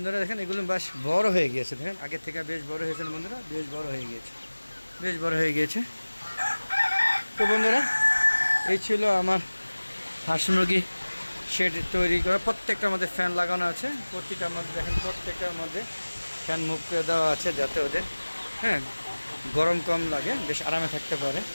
দেখেন এগুলো বেশ বড় হয়ে গিয়েছে, দেখেন আগের থেকে বেশ বড় হয়েছে বন্ধুরা, বেশ বড় হয়ে গিয়েছে। তো বন্ধুরা এই ছিল আমার হাঁস মুরগি শেড তৈরি করা। প্রত্যেকটার মধ্যে ফ্যান লাগানো আছে, প্রতিটার মধ্যে দেখেন প্রত্যেকটার মধ্যে ফ্যান মুভ করে দেওয়া আছে, যাতে ওদের গরম কম লাগে, বেশ আরামে থাকতে পারে।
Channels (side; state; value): both; inverted; correlation -1.00